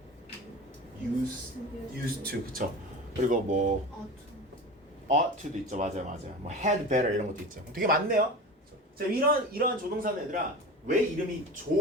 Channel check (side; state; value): both; normal; correlation 0.32